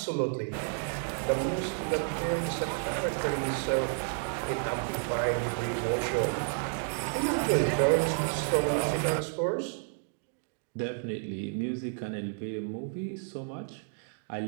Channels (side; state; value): left; silent; digital silence